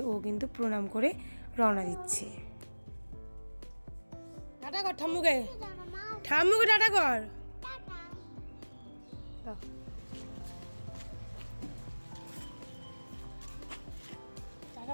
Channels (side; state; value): both; inverted; correlation -1.00